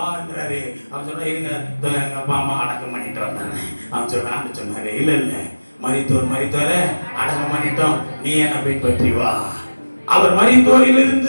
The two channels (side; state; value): both; inverted; correlation -1.00